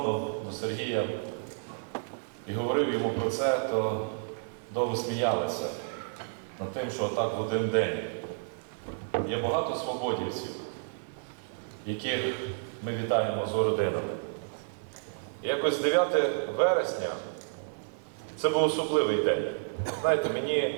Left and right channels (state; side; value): silent; left; digital silence